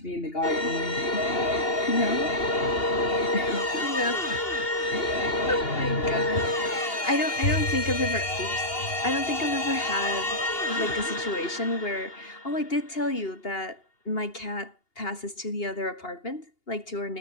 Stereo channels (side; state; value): right; late; 2.8 ms